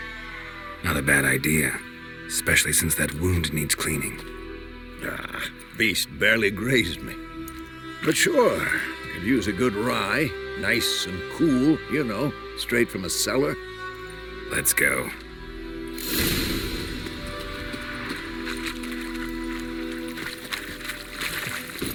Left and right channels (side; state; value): both; identical; correlation 1.00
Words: Not a bad idea. Especially since that wound needs cleaning. Beast barely grazed me. But sure, could use a good rye. Nice and cool, you know, straight from a cellar. Let's go.